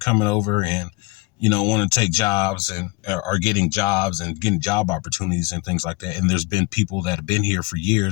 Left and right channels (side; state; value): right; quieter; 25.5 dB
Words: over and, you know, want to take jobs and are getting jobs and getting job opportunities and things like that. And there's been people that have been here for